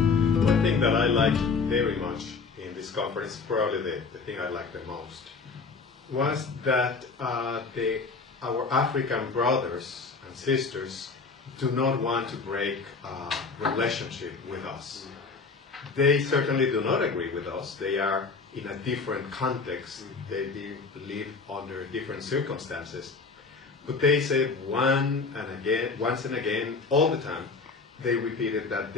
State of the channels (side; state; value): right; quieter; 4.5 dB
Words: thing that I liked very much in this conference, probably the thing I liked the most, was that our African brothers and sisters do not want to break a relationship with us. They certainly do not agree with us. They are in a different context. They live under different circumstances. But they say once and again, all the time, they repeated that